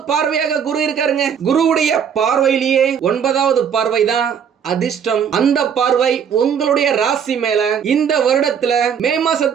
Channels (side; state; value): left; quieter; 7.7 dB